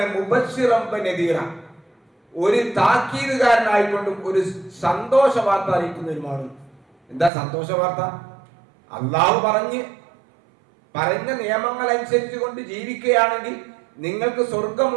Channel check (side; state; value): left; drops out; at 7.3 s